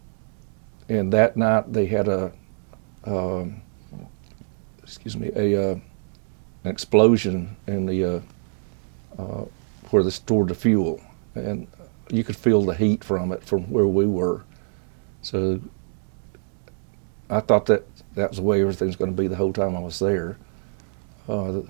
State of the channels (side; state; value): left; silent; digital silence